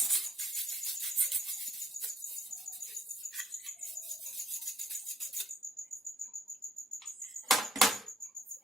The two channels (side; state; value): both; normal; correlation 0.66